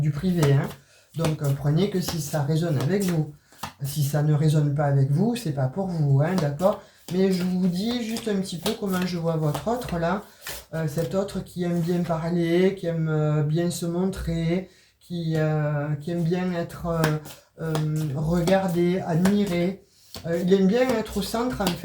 privé. Hein. Donc prenez que si ça résonne avec vous. Si ça ne résonne pas avec vous, c'est pas pour vous, hein, d'accord? Mais je vous dis juste un petit peu comment je vois votre autre là. Cet autre qui aime bien parler, qui aime bien se montrer, qui aime bien être regardé, admiré. Il aime bien être au centre en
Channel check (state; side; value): identical; both; correlation 1.00